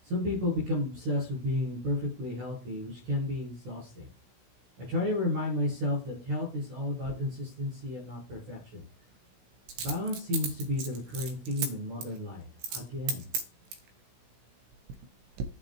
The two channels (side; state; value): left; late; 16 ms